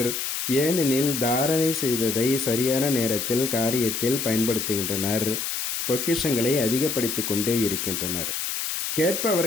ஏனெனில் தாரணை செய்ததை சரியான நேரத்தில் காரியத்தில் பயன்படுத்துகின்றனர், பொக்கிஷங்களை அதிகப்படுத்தி கொண்டே இருக்கின்றனர்.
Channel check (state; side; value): noise; left; hiss, 3 dB below the sound